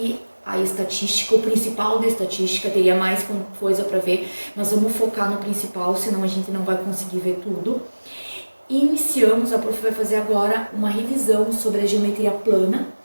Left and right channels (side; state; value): both; inverted; correlation -1.00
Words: a estatística. O principal da estatística, teria mais coisa para ver, nós vamos focar no principal, senão a gente não vai conseguir ver tudo. Iniciamos, a Prof vai fazer agora uma revisão sobre a geometria plana,